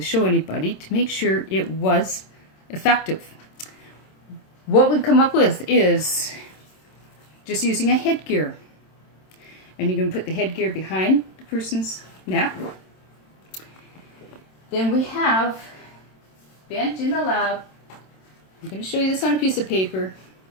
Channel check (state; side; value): late; right; 27 ms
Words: show anybody to make sure it was effective. What we've come up with is just using a headgear. And you're going to put the headgear behind the person's neck. Then we have bent in the lab. I'm going to show you this on a piece of paper.